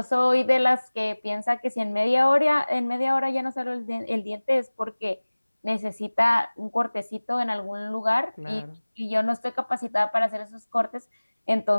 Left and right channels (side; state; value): both; inverted; correlation -1.00